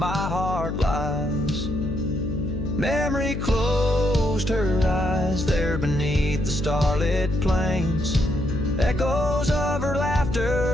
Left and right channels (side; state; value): left; noise; hum, 4 dB below the sound